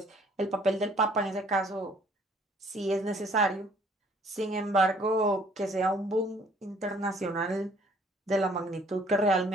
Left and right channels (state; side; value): normal; both; correlation 0.59